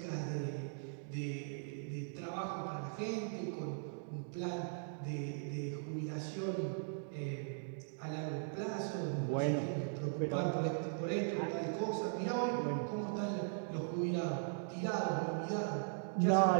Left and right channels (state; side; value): silent; left; digital silence